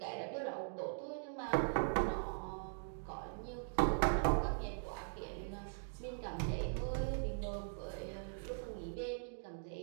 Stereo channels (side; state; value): left; silent; digital silence